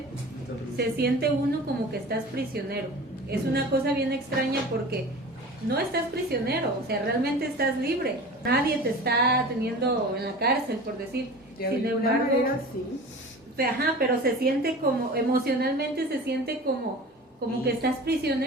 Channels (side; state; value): both; normal; correlation 0.37